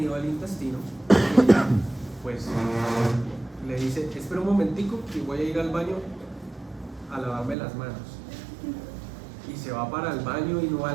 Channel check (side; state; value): left; drops out; at 7.6 s